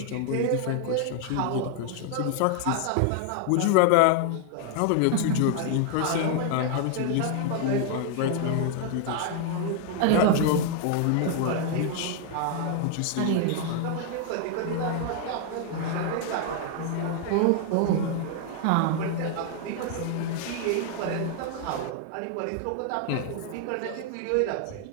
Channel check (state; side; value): different; both; correlation 0.00